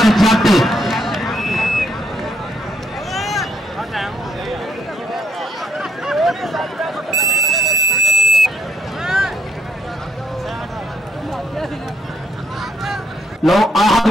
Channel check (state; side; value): normal; both; correlation 0.71